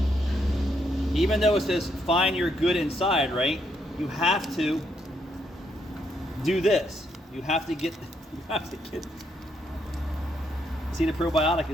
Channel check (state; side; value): normal; both; correlation 0.75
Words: Even though it says find your good inside, right? You have to do this. You have to get, see, the probiotic